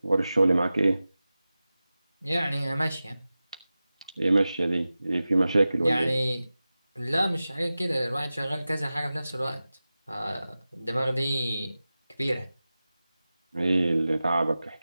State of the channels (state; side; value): inverted; both; correlation -0.95